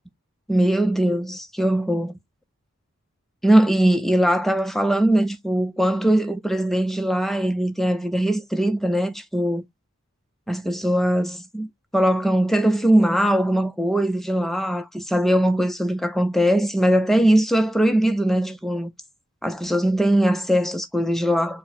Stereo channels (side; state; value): both; normal; correlation 0.95